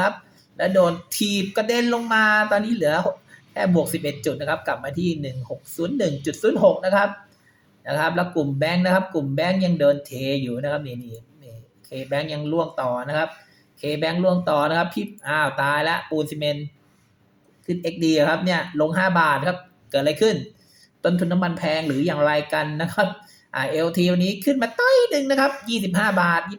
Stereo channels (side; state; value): both; identical; correlation 1.00